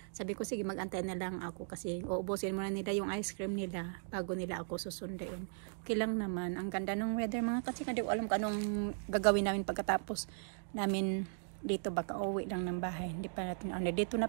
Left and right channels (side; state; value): left; silent; digital silence